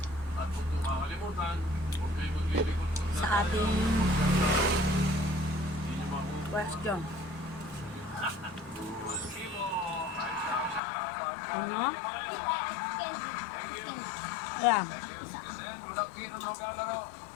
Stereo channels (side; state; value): right; drops out; at 10.8 s